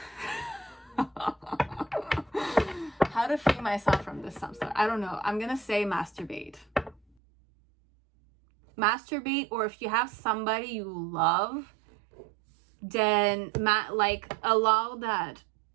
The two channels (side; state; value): left; drops out; at 7.0 s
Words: how to free myself from this samsara. I don't know. I'm gonna say masturbate. Masturbate, or if you have somebody you love, then allow that